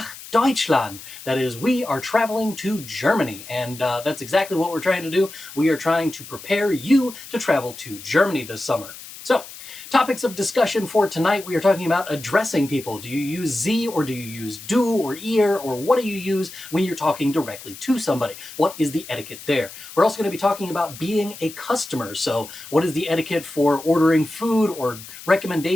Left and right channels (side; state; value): left; noise; hiss, 15 dB below the sound